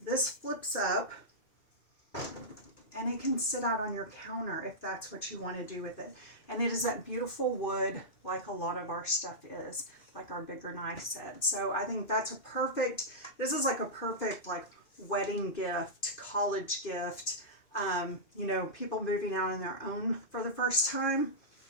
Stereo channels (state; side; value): late; right; 2.5 ms